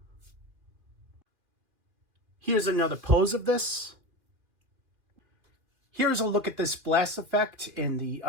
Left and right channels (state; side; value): late; left; 2.3 ms